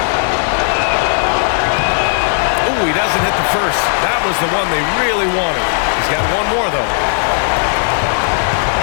Doesn't hit the first. That was the one they really wanted. He's got one more, though.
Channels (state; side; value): silent; right; digital silence